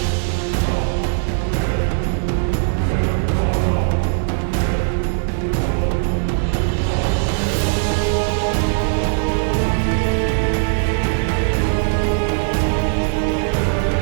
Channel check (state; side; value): silent; left; 66 dB below the other